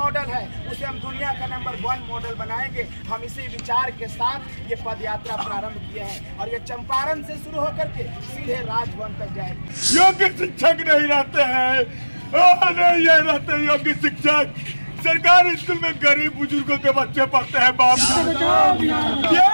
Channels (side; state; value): both; inverted; correlation -1.00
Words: है, उसे हम दुनिया का नंबर 1 मॉडल बनाएंगे। हम इसी विचार के साथ ये पद यात्रा प्रारंभ किया है और ये चंपारण से शुरू होकर के सीधे राजभवन तक जाएगी। योग्य शिक्षक नहीं रहते हैं, नहीं ये रहते योग्य शिक्षक। सरकारी स्कूल में गरीब बुजुर्गों के बच्चे पढ़ते हैं बापू।